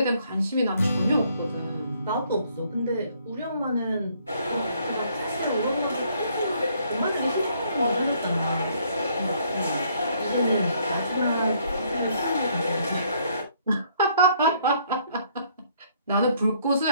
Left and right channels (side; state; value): both; inverted; correlation -0.66